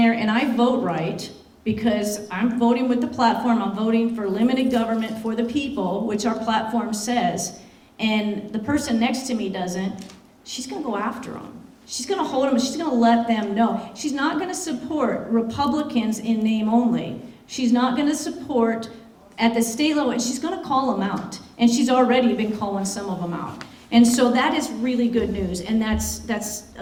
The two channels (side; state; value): both; identical; correlation 1.00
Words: and I vote right, because I'm voting with the platform, I'm voting for limited government for the people, which our platform says, and the person next to me doesn't, she's going to go after them. She's going to hold them, she's going to let them know. She's not going to support Republicans in name only. She's not going to support at the state level, and she's going to call them out. And she's already been calling some of them out. And so that is really good news, and that's